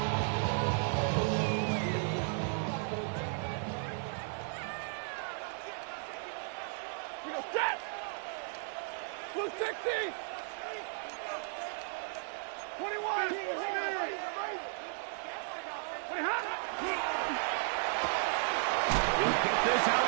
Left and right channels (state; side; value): silent; left; 55 dB below the other